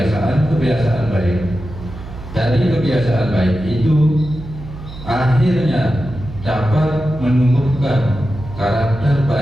baik. Dari kebiasaan baik itu akhirnya dapat menumbuhkan karakter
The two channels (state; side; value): noise; right; hum, 13 dB below the sound